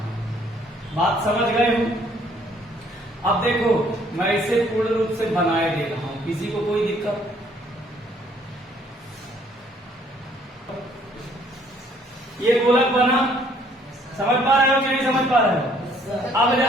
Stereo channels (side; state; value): both; normal; correlation 0.62